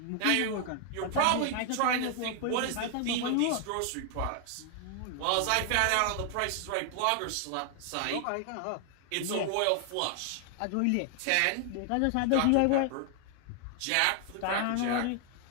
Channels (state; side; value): different; both; correlation 0.00